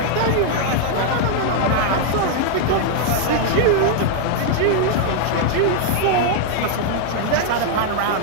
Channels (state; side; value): different; both; correlation 0.00